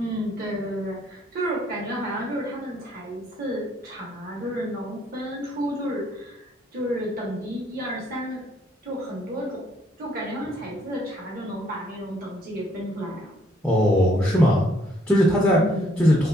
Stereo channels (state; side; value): normal; both; correlation 0.67